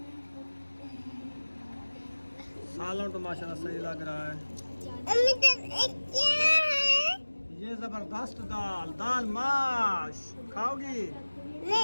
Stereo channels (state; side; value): inverted; both; correlation -1.00